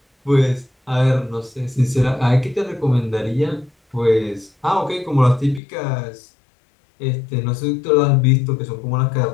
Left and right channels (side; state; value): right; drops out; at 5.6 s